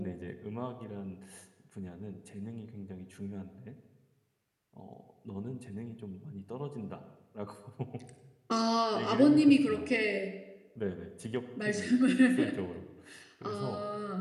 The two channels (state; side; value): identical; both; correlation 1.00